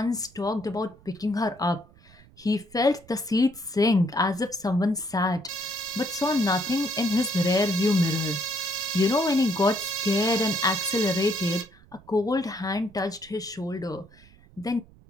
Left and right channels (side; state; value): right; noise; rumble, 26 dB below the sound